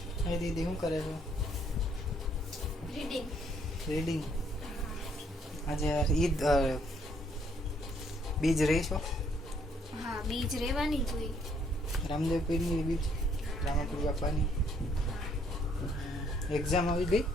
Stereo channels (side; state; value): both; normal; correlation 0.67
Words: હા દીદી શું કરે છે? રીડિંગ. આજે ઈદ બીજ રહીશો? હા, બીજ રહેવાની જોઈએ. રામદેવ પીરની બીજ, રામપુર બાપાની એક્ઝામ આવી ગઈ.